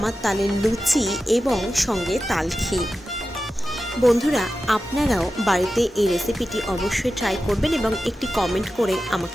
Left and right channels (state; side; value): normal; both; correlation 0.92